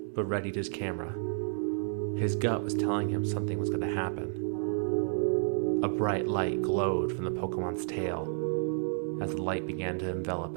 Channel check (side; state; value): left; silent; digital silence